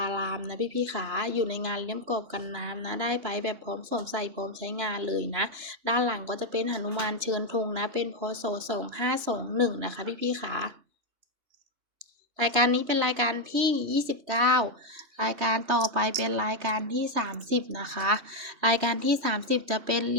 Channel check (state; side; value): late; left; 3.0 ms